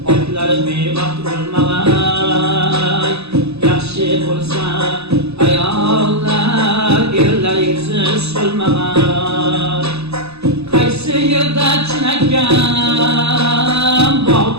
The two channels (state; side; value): late; left; 0.79 ms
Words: otlar bevaqt bo'lmag'ay. Yaxshi bo'lsa ayollar, erlar yuzi so'lmag'ay. Qaysi yerda chinakam